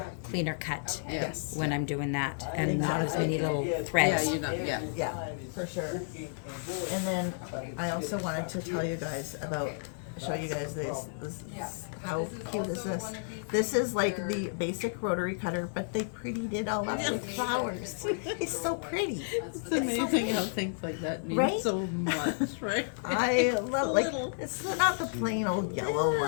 cleaner cut Yes. when I'm doing that, and not as many little Yeah, threads. you're not. Yeah. Yeah, for sure. And then I also wanted to show you guys this. How cute is this? This is like the basic rotary cutter, but they prettied it all up with flowers. It's so pretty. It's amazing how things like that mean Right? so much, right? I love like little. it's not the plain old yellow Yeah,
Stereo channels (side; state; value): right; silent; digital silence